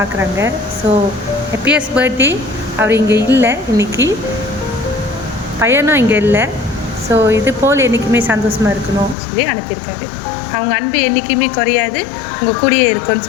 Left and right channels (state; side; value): drops out; right; at 9.2 s